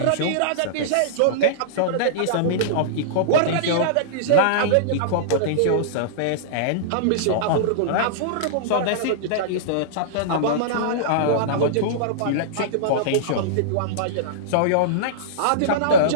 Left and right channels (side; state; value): both; different; correlation -0.03